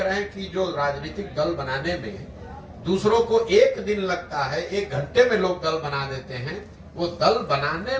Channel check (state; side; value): identical; both; correlation 1.00